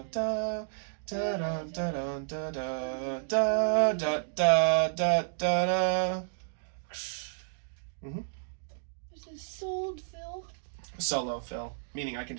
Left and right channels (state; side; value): silent; left; digital silence